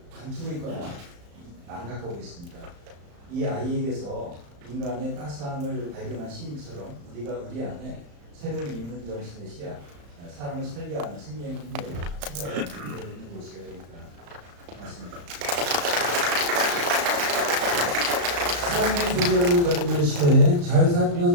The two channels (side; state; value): left; late; 35 ms